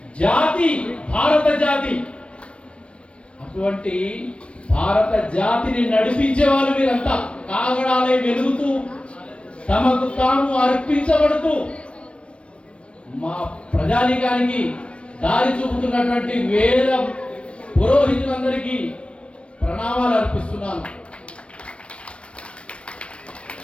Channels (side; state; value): right; late; 0.060 ms